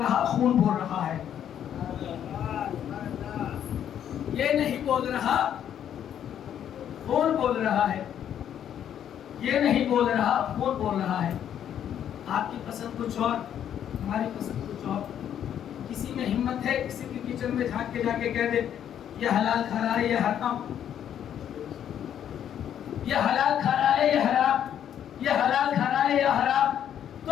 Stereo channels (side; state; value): right; quieter; 9.8 dB